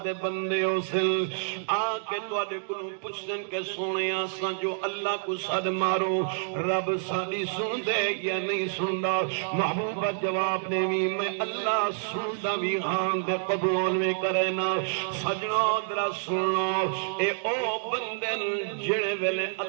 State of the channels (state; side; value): silent; left; digital silence